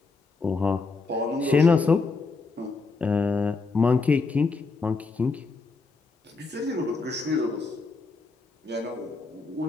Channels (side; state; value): right; quieter; 4.1 dB